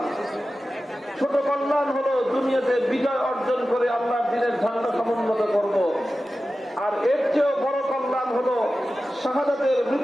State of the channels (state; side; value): normal; both; correlation 0.94